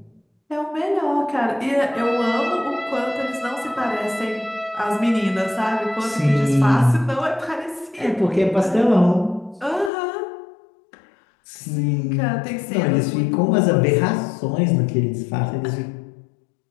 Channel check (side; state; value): right; drops out; at 9.9 s